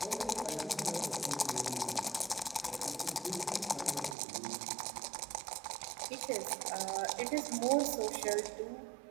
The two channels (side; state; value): left; drops out; at 4.2 s